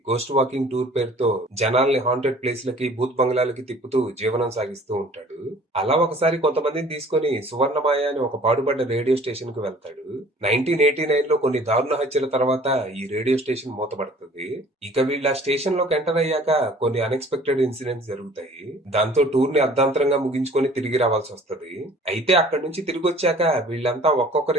గోస్ట్ వాకింగ్ టూర్ పేరుతో జనాల్ని హాంటెడ్ ప్లేస్ లకి, భూత్ బంగ్లాలకి తిప్పుతూ జీవనం సాగిస్తూ ఉంటాడు. అలా ఒకసారి కొంతమందిని తీసుకొని సువర్ణమాయ అని ఒక పాడుపడ్డ రేడియో స్టేషన్ కు వెళ్తాడు. 1989 లో కొన్ని దారుణ హత్యల తర్వాత ఈ రేడియో స్టేషన్ మూతపడుతుంది. ఇక వీళ్ళు ఆ స్టేషన్ లోకి ఎంటర్ అయ్యాక కొన్ని అన్ఎక్స్పెక్టెడ్ ఇన్సిడెంట్స్ జరుగుతాయి. దాంతో టూర్ ని అర్ధాంతరంగా ముగించుకొని తిరిగి రావాల్సి వస్తుంది. అయితే అక్కడి నుంచి తిరిగి వచ్చాక వీళ్ళంతా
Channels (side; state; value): both; normal; correlation 0.51